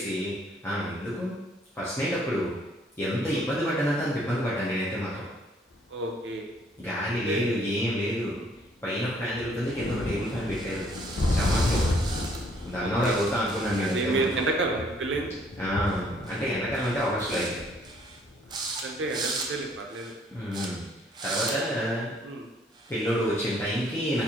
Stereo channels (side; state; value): both; normal; correlation 0.63